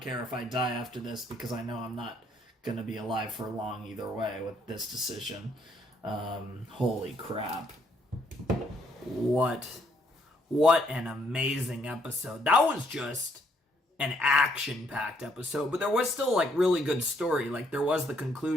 care if I die after this because I know I'm not going to be alive for long either way with this decision. Holy crap. What an amazing episode. That was just an action-packed episode, but there was still, like, really good story. Like, there was the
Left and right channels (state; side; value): normal; both; correlation 0.70